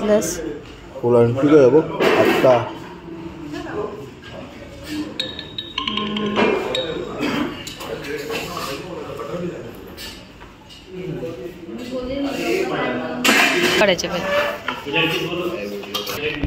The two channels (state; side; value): identical; both; correlation 1.00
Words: फुलांची काय बघ आत्ता काढायचे